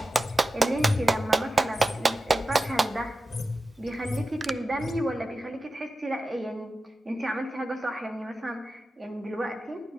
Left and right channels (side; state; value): both; normal; correlation 0.93